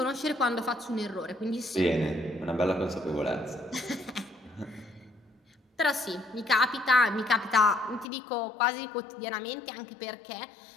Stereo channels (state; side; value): drops out; right; at 8.1 s